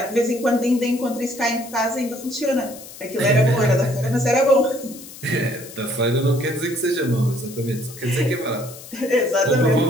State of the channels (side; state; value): left; noise; hiss, 16 dB below the sound